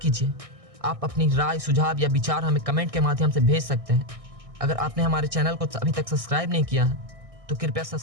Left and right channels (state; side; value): late; left; 1.6 ms